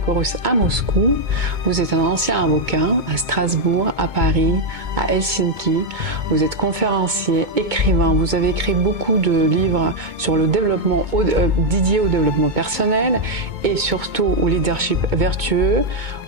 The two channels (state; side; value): late; left; 2.2 ms